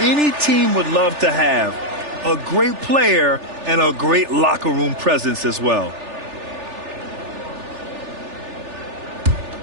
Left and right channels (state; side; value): late; left; 3.4 ms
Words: team would love to have. A great player and a great locker room presence as well.